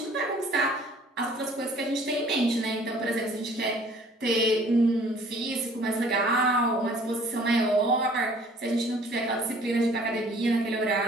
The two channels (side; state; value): both; normal; correlation 0.54